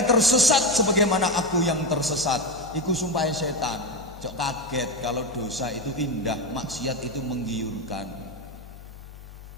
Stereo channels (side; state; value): both; normal; correlation 0.14